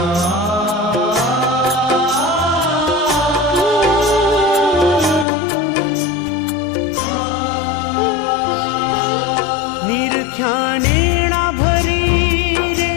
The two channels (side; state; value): right; drops out; at 5.2 s